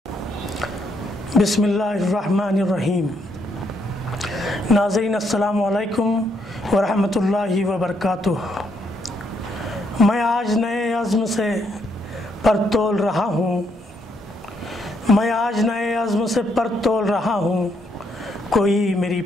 بسم اللہ الرحمن الرحیم. ناظرین السلام علیکم ورحمۃ اللہ وبرکاتہ. میں آج نئے عزم سے پر تول رہا ہوں، میں آج نئے عزم سے پر تول رہا ہوں، کوئی میری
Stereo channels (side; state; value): both; normal; correlation 0.74